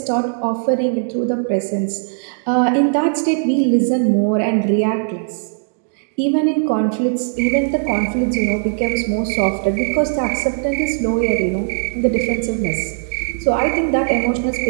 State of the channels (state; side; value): silent; left; digital silence